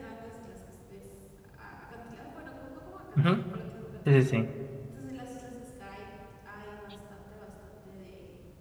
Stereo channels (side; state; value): both; identical; correlation 1.00